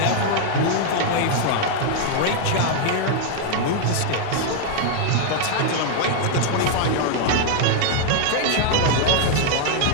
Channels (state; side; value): different; both; correlation 0.00